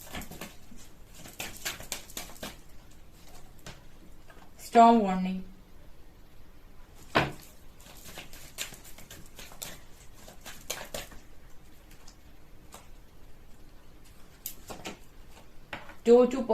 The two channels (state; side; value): identical; both; correlation 1.00